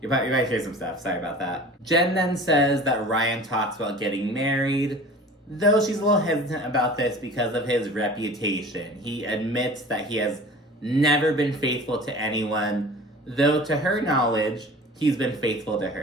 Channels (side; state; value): both; normal; correlation 0.41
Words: might hear some stuff. Sorry about that. Jen then says that Ryan talks about getting married, though she's a little hesitant about this because of his reputation. He admits that he has never been faithful to anyone, though to her knowledge, he's been faithful to